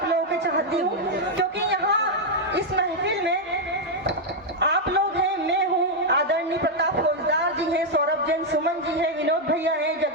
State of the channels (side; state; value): both; normal; correlation 0.00